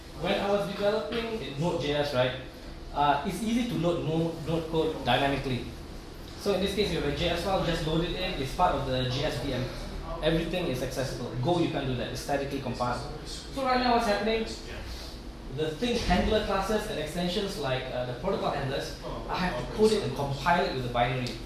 When I was developing in Node.js, right, it's easy to load node code dynamically. So in this case, you have a JS file, just load it in. It's part of the JSVM. Everything is accessible. Go, you can't do that. It's statically compiled. So right now, what's happening? The thing handler classes and extensions like the protocol handlers, I have to code it and compile it with a binary.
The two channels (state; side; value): identical; both; correlation 1.00